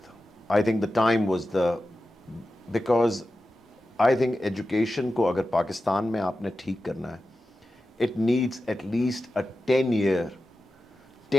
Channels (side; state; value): both; normal; correlation 0.93